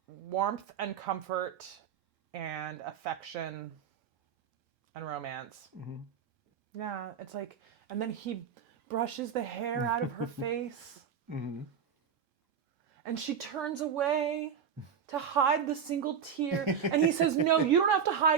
warmth and comfort and affection and romance. Yeah, it's like, and then he brushes the hair out of her face. And she turns away to hide the single tear. And he says, no, you don't have to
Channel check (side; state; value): left; quieter; 7.3 dB